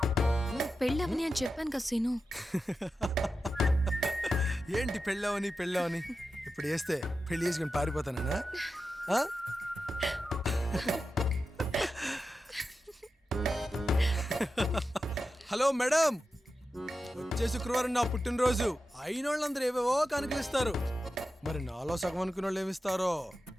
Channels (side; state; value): both; normal; correlation 0.91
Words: పెళ్ళవని అని చెప్పాను కదా సీను. ఏంటి పెళ్ళవని పెళ్ళవని? ఇప్పుడు వేస్తే పెళ్లి చేసుకుని పారిపోతానా? హలో మేడం, వచ్చే శుక్రవారం నా పుట్టినరోజు. అయినోళ్ళందరూ ఏవేవో కానుకలిస్తారు. మరి నాలో సగం అనుకున్న వాళ్ళు ఏమిస్తారో?